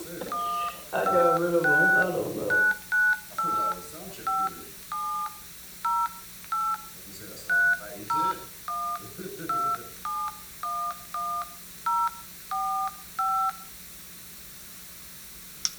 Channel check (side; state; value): both; identical; correlation 1.00